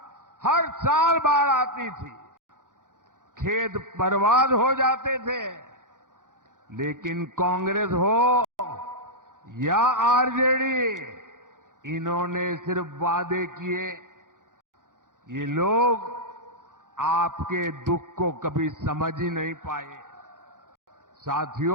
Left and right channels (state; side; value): late; left; 0.88 ms